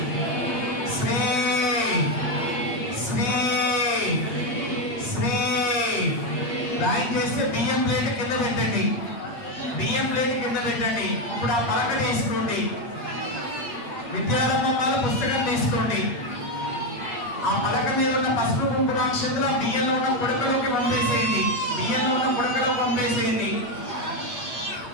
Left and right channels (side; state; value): right; late; 8.5 ms